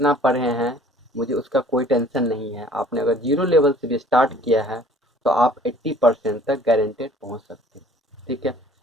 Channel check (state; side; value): normal; both; correlation 0.53